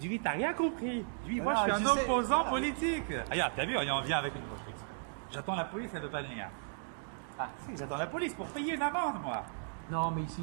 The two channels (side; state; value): left; silent; digital silence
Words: t'as rien compris. Dis-lui, moi Ah, je suis je un sais. opposant Ah. politique. Regarde, t'as vu, on vient avec une construction. J'attends la police, elle ne veut pas venir. Ah, Si, j'attends la police pour payer une amende, moi. non, mais ici,